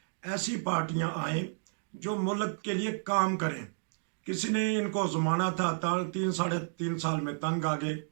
ऐसी पार्टियां आएँ जो मुल्क के लिए काम करें। किसी ने इनको ज़माना था, 3 साढ़े 3 साल में तंग आ गए।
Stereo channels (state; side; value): silent; left; digital silence